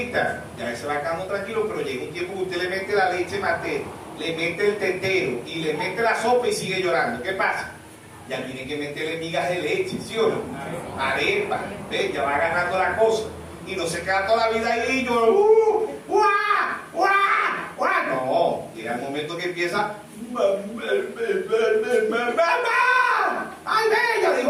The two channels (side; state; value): both; identical; correlation 1.00